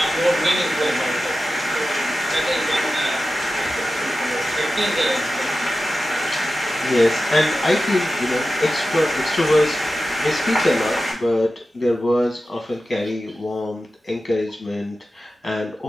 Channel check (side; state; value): both; normal; correlation 0.93